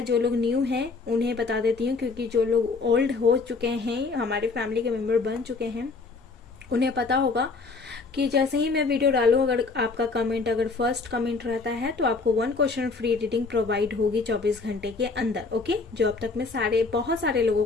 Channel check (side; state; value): right; quieter; 4.2 dB